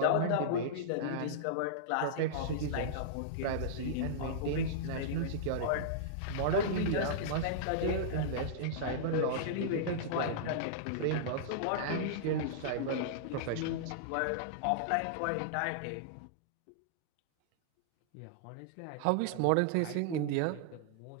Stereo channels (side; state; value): both; different; correlation -0.02